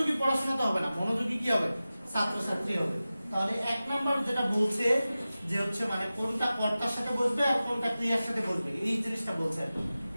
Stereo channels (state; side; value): inverted; both; correlation -0.96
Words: পড়াশোনা তো হবে না, মনোযোগী কি হবে? ছাত্রছাত্রী হবে। তাহলে 1 নাম্বার যেটা বলছে যে হচ্ছে মানে কোনটা কর্তার সাথে বসবে আর কোনটা ক্রিয়ার সাথে বসবে, এই জিনিসটা বলছে,